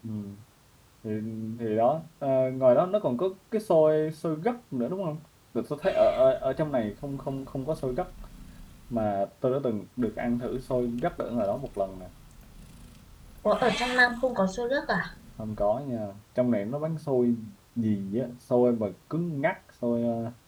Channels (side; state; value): both; identical; correlation 1.00